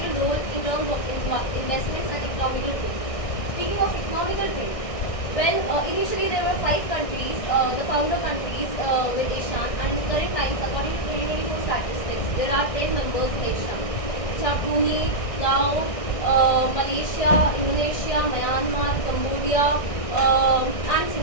role in terms of investments and economical trade. Speaking of economical trade, well, initially there were 5 countries, the founder countries with ASEAN, and in current times, according to 2024 statistics, there are 10 members in ASEAN, which are Brunei, Laos, Malaysia, Indonesia, Myanmar, Cambodia, and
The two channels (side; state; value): right; late; 1.6 ms